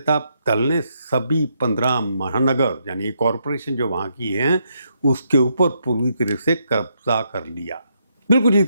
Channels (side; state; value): both; inverted; correlation -0.77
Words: दल ने सभी 15 महानगर यानी कॉरपोरेशन जो वहाँ की हैं उसके ऊपर पूरी तरह से कब्जा कर लिया, बिल्कुल